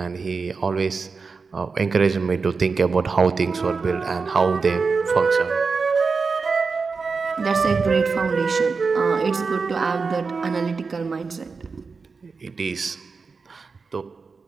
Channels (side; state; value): left; quieter; 4.7 dB